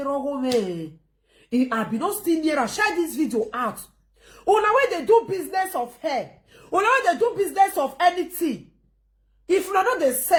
run home. I be not still near and share this video out. On the way they do business of hair. On the way they do business of anything. If you know they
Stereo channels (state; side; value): identical; both; correlation 1.00